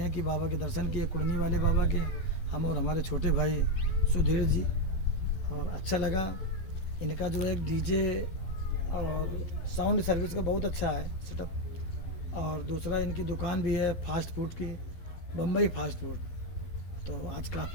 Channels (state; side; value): late; right; 12 ms